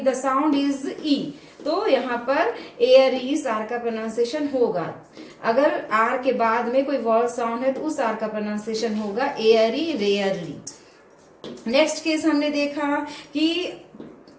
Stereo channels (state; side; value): identical; both; correlation 1.00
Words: द साउंड इज ई. तो यहाँ पर एयरी आर का प्रोनाउंसिएशन होगा. अगर R के बाद में कोई वॉल साउंड है तो उस R का प्रोनाउंसिएशन होगा एयरी, रेयरली. नेक्स्ट केस हमने देखा कि